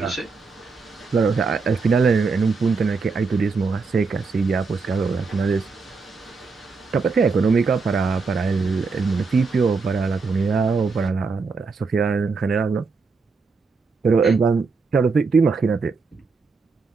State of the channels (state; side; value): quieter; left; 4.6 dB